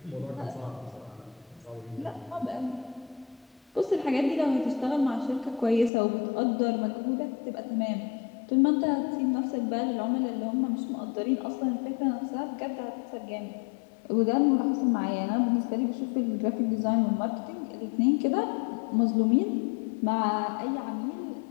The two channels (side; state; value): right; drops out; at 5.9 s